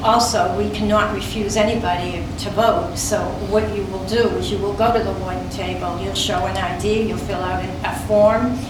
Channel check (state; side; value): identical; both; correlation 1.00